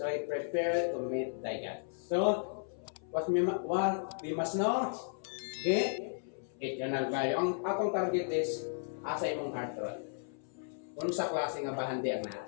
prepare to meet thy God. So, what we must know, get eternal value. Ang atong target is asa imong heart ron. Kung sa klase nga bahandi ang naa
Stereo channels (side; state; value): right; silent; 55 dB below the other